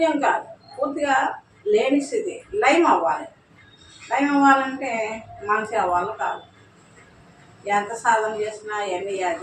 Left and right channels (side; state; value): both; identical; correlation 1.00